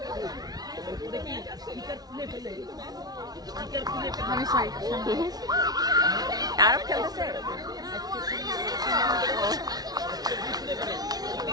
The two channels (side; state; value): left; late; 0.19 ms